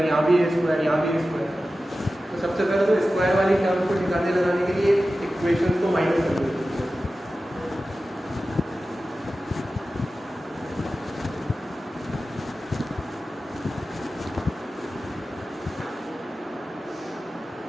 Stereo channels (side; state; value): both; normal; correlation 0.94